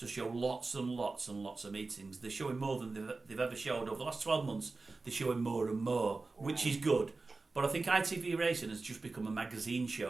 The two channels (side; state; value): left; quieter; 3.7 dB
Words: show lots and lots and lots of meetings. They're showing more than they've ever showed over the last 12 months. They're showing more and more, which is good. But I think ITV Racing has just become a magazine